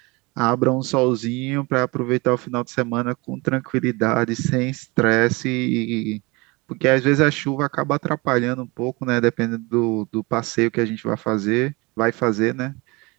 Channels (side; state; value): left; quieter; 25.5 dB